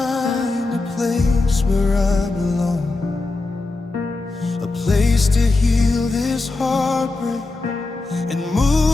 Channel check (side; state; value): right; quieter; 3.4 dB